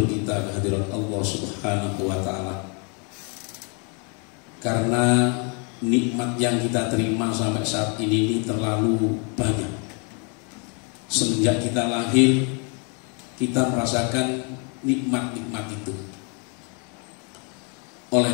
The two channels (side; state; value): right; quieter; 36.5 dB